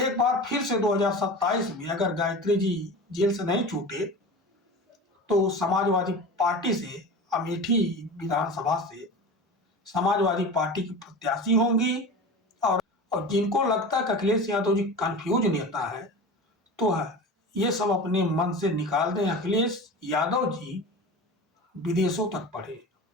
बार फिर से 2027 में अगर गायत्री जी जेल से नहीं छूटे तो समाजवादी पार्टी से, अमेठी विधानसभा से समाजवादी पार्टी की प्रत्याशी होंगी। और जिनको लगता है कि अखिलेश यादव जी कंफ्यूज नेता है, तो ये सब अपने मन से निकाल दें। अखिलेश यादव जी विदेशों तक पढ़े।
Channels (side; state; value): both; normal; correlation 0.32